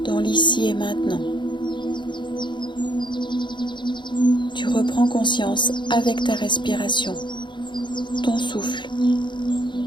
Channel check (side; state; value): right; late; 0.23 ms